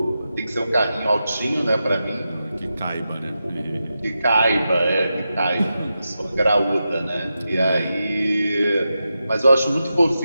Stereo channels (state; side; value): inverted; both; correlation -0.89